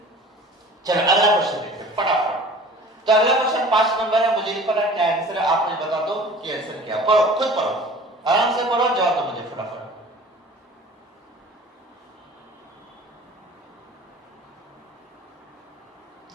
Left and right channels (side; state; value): both; normal; correlation 0.44